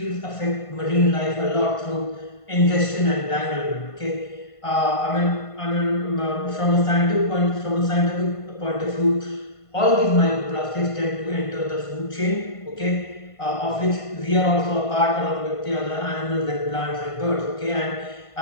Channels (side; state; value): right; late; 1.5 ms